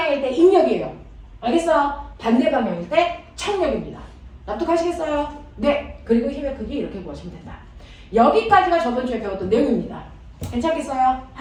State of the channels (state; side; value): identical; both; correlation 1.00